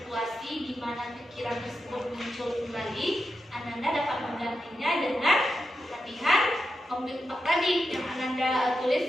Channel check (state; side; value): normal; both; correlation 0.88